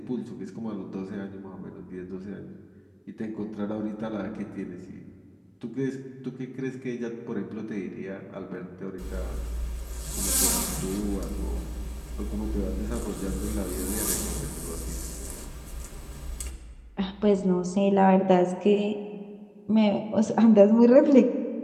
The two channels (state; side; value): identical; both; correlation 1.00